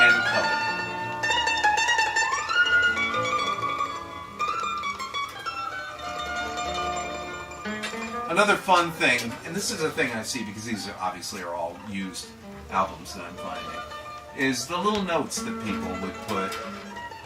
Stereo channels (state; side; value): identical; both; correlation 1.00